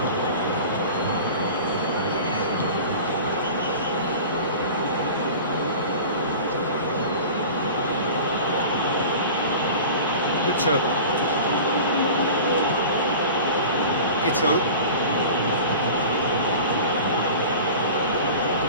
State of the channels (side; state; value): both; inverted; correlation -0.37